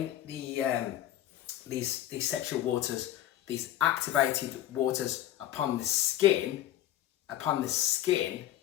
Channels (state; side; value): quieter; right; 12.8 dB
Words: these sexual waters, these activated waters upon the skin,